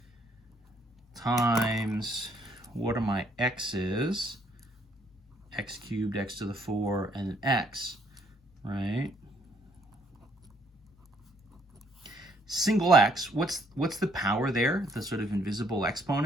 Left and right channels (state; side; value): normal; both; correlation 0.67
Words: Times, what are my x's? X cubed, x to the 4, and an x, right? Single x, what's the power there? The sort of invisible